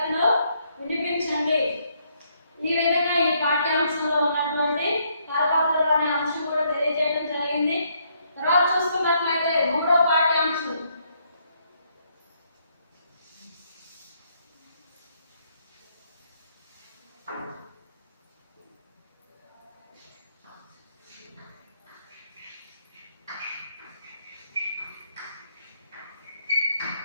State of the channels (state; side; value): inverted; both; correlation -0.72